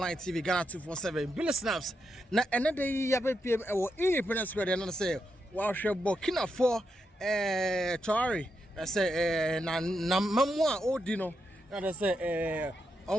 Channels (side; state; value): both; normal; correlation 0.84